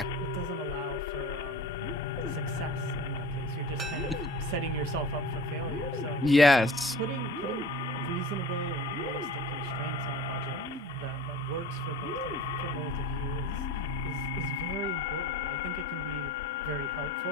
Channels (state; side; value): normal; both; correlation 0.40